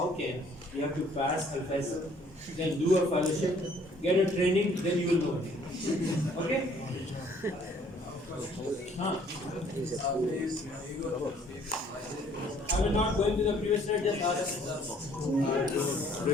can? You have to pass Al-Faisal, then do a fellowship, get a training, then you will know. Okay? Huh? I will not go into the previous slide, just ask.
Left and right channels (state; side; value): normal; both; correlation 0.60